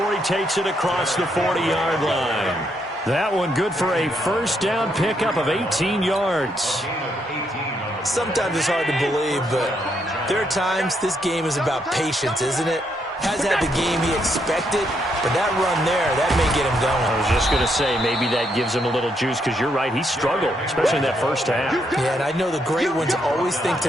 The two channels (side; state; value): both; normal; correlation 0.76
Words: he takes it across the 40-yard line. That one good for a first down pickup of 18 yards. Sometimes it's hard to believe, but there are times this game is about patience, isn't it? Hasn't had the game he expected, but that run there, that may get him going. I was just going to say, maybe that gives him a little juice, because you're right, he struggled, especially in that first half. Yeah, and I know the great ones always think